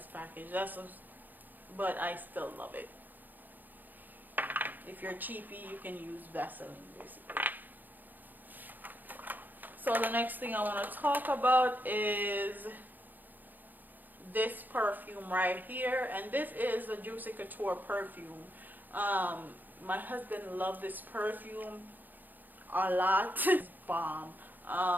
package. But I still love it. If you're cheapy, you can use Vaseline basically. So the next thing I want to talk about is this perfume right here, and this is the Juicy Couture perfume. My husband loved this perfume a lot. It's bomb.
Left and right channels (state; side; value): late; left; 0.086 ms